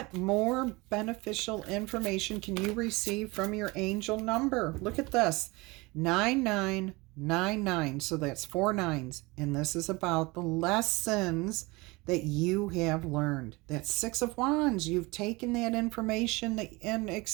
more beneficial information can you receive from your angel number? Look at this, 9999. So that's 4 nines. And this is about the lessons that you have learned. That's Six of Wands. You've taken that information and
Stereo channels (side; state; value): left; quieter; 24.0 dB